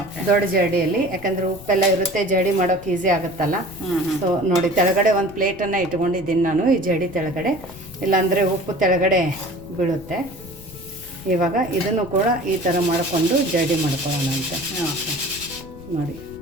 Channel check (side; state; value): left; noise; rumble, 18 dB below the sound